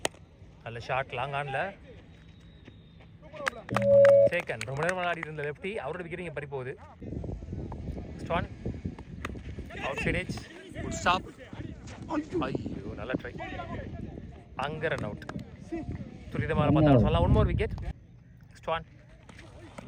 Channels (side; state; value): both; identical; correlation 1.00